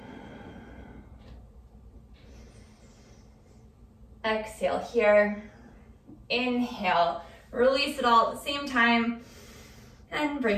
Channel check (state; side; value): identical; both; correlation 1.00